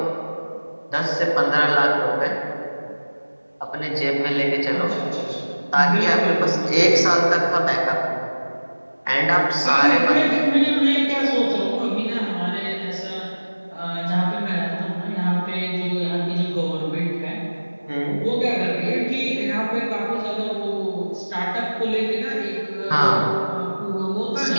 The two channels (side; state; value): both; inverted; correlation -1.00